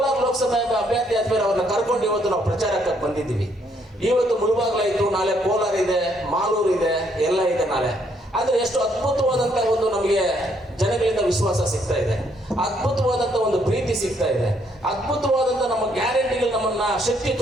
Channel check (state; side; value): normal; both; correlation 0.70